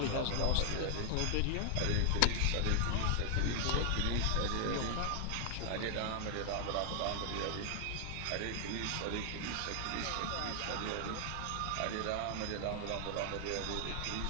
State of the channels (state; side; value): different; both; correlation 0.00